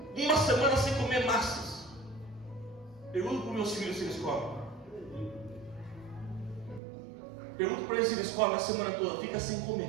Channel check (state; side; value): drops out; left; at 6.8 s